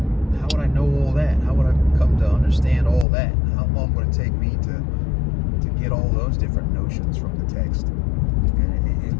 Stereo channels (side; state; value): right; drops out; at 3.1 s